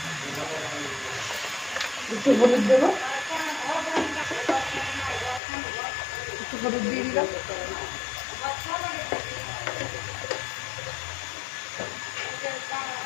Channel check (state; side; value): drops out; right; at 5.4 s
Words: একটু হলুদ দেবো, একটু হলুদ দিয়ে দিলাম।